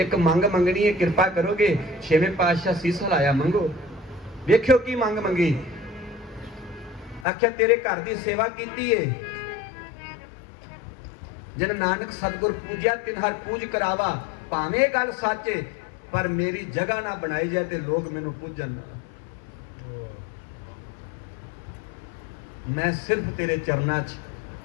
मंग मंगनी है, कृपा करोगे? छेवें पातशाह सीस हिलाया, मंगो। वेख्यो की मंग मंगी। आख्या तेरे घर की सेवा की है, जिन नानक सतगुर पूजा तिन हर पूज करावा। भावें गल सच है, पर मेरी जगह ना बनाई जाए तो लोग मैनू पूजन। मैं सिर्फ तेरे चरना च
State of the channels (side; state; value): right; drops out; at 7.2 s